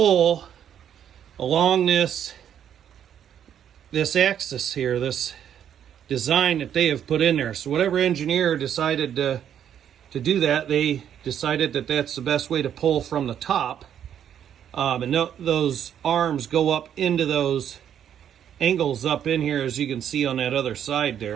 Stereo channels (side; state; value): left; quieter; 9.4 dB